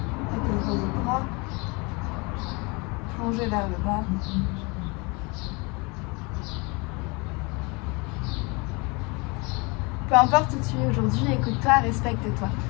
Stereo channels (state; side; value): quieter; right; 28.3 dB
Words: Étendre les bras, plonger vers le bas. Peu importe où tu es aujourd'hui, écoute-toi, respecte-toi.